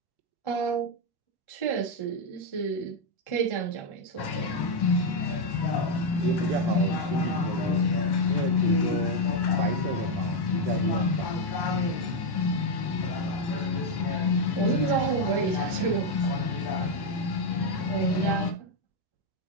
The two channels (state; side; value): late; right; 1.1 ms